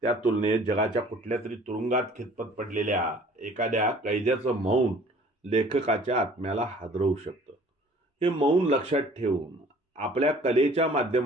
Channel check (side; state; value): both; normal; correlation 0.52